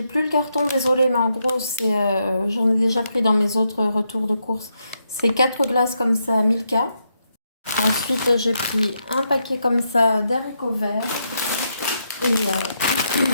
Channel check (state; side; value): inverted; both; correlation -0.81